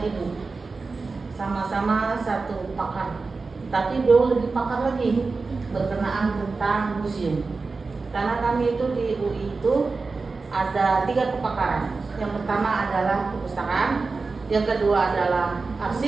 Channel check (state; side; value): quieter; left; 4.1 dB